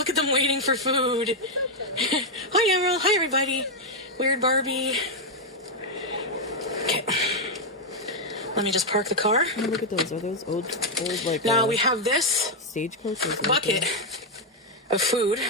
at them waiting for food. Hi, Emerald. Hi, everybody. Weird Barbie. Okay. Let me just park the car. Oh, look at those. Are those old like Now we have this stagecoaches? right bucket there? of food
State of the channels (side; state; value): both; normal; correlation 0.01